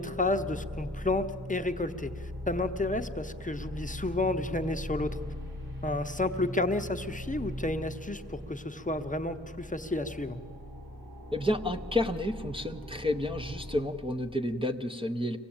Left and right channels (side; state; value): both; normal; correlation 0.57